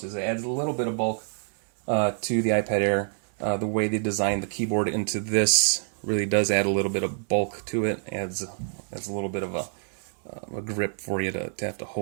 It adds a little bit of bulk to the iPad Air. The way they designed the keyboard into this really does add a little bit of bulk to it. Adds a little bit of a grip for you to have to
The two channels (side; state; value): left; silent; digital silence